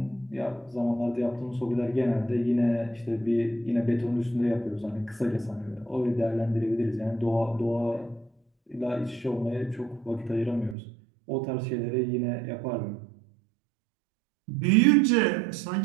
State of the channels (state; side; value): drops out; left; at 10.8 s